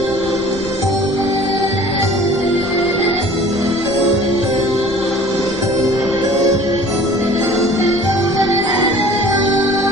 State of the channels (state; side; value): noise; left; rumble, 16 dB below the sound